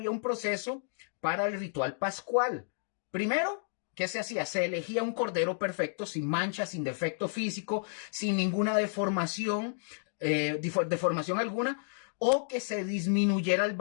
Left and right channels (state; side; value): silent; right; digital silence